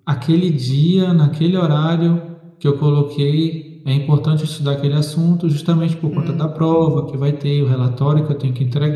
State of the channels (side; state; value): both; identical; correlation 1.00